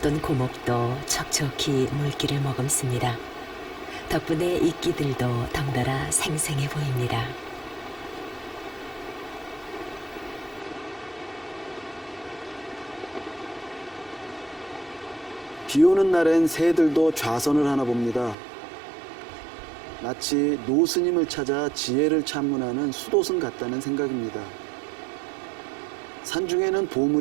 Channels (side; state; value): left; drops out; at 18.4 s